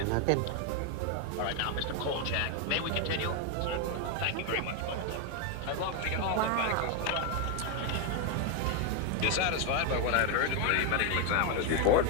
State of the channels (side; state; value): both; different; correlation 0.01